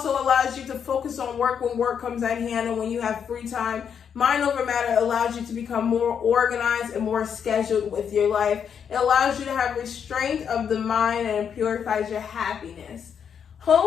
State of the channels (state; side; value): quieter; right; 7.6 dB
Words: allows you to focus on work when work comes at hand and when you have free time. Mind over matter allows you to become more organized and more scheduled with your life. It allows you to have restraint of the mind, and it purifies your happiness.